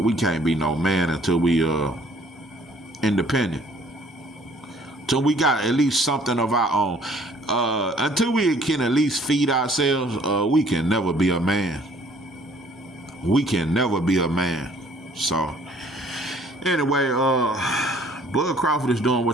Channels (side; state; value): both; normal; correlation 0.58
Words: we can't be no man until we independent. Till we got at least something of our own. Until we can at least feed ourselves, we can never be a man. We can never be a man. So anyway, Bud Crawford is doing